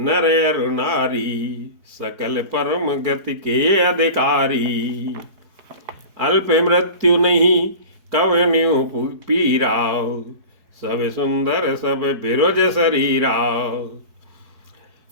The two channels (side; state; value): left; late; 4.7 ms